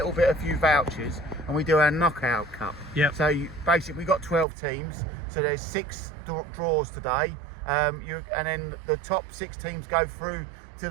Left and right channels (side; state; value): left; drops out; at 4.5 s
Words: few vouchers, and we do our knockout cup. Yep. So basically we got 12 teams, so there's 6 draws today, and then the top 6 teams go through to